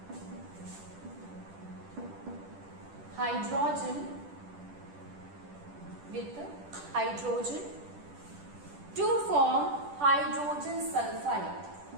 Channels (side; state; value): left; late; 10 ms